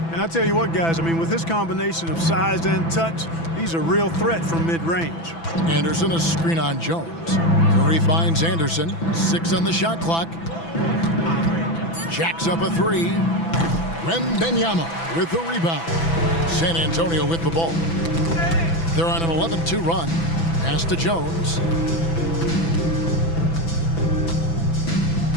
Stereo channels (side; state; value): right; late; 6.0 ms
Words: And I tell you what, guys, I mean, with this combination of size and touch, he's a real threat from mid-range. Anderson, a screen on Jones. Curry finds Anderson. 6 on the shot clock. Jacks up a 3. Wembanyama with the rebound. San Antonio with the ball. They're on an 11-2 run. Pass to Jones.